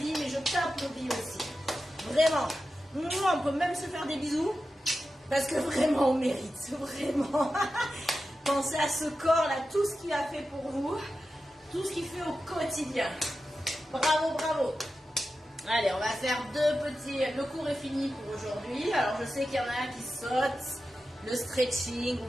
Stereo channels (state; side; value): normal; both; correlation 0.92